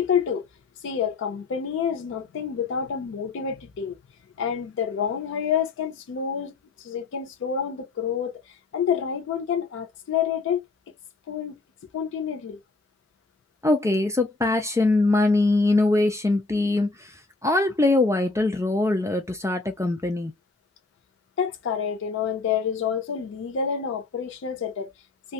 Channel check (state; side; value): quieter; right; 3.7 dB